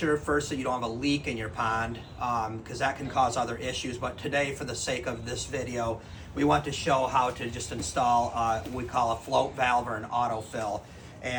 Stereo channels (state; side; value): identical; both; correlation 1.00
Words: first that you don't have a leak in your pond, because that can cause other issues. But today, for the sake of this video, we want to show how to just install what we call a float valve or an autofill.